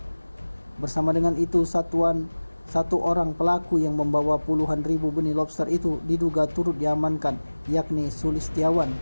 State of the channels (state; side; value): inverted; both; correlation -1.00